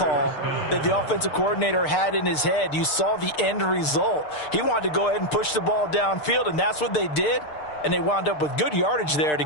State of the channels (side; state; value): right; late; 6.6 ms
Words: that the offensive coordinator had in his head. You saw the end result. He wanted to go ahead and push the ball downfield, and that's what they did. And they wound up with good yardage there to